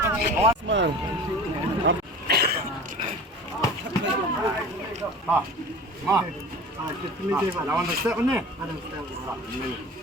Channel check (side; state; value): both; normal; correlation 0.39